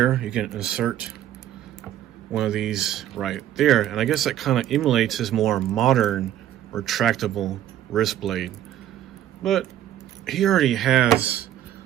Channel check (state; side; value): quieter; left; 11.9 dB